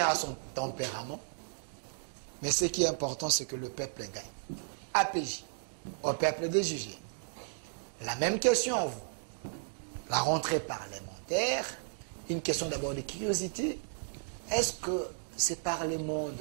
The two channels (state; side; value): silent; left; digital silence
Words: a son tempérament. Mais ce qui est important, c'est que le peuple gagne. APJ, au peuple de juger. La même question à vous. La rentrée parlementaire, une question d'abord de curiosité. Est-ce que ces parlements